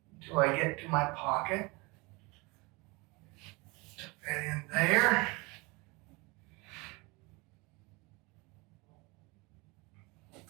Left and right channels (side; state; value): left; quieter; 26.1 dB